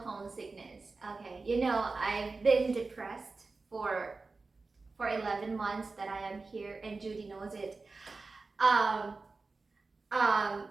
homesickness? Okay, I've been depressed for 11 months that I am here, and Judy knows it. Um,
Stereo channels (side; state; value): left; quieter; 3.8 dB